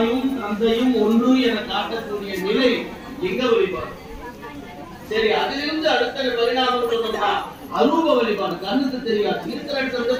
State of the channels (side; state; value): both; identical; correlation 1.00